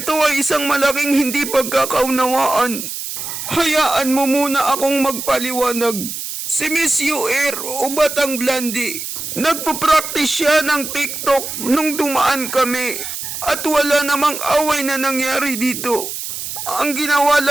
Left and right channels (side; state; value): right; noise; hiss, 7 dB below the sound